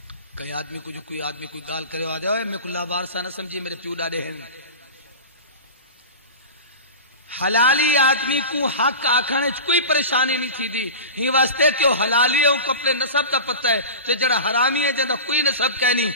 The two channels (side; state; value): both; inverted; correlation -0.30